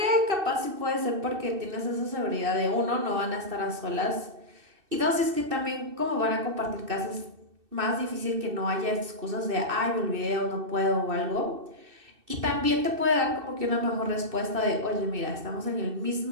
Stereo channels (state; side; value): late; left; 2.6 ms